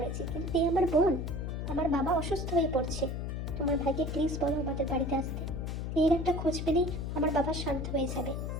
কিন্তু এই আমার বোন, আমার বাবা অসুস্থ হয়ে পড়ছে। তোমার ভাইকে প্লিজ বলো আমাদের বাড়িতে আসতে। এর একটা খোঁজ পেলেই আমার বাবা শান্ত হয়ে যাবে।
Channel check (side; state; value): left; noise; hum, 3 dB below the sound